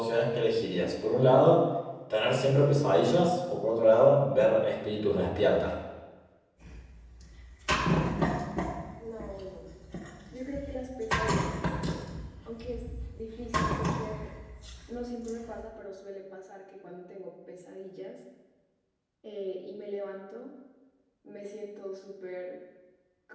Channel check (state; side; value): identical; both; correlation 1.00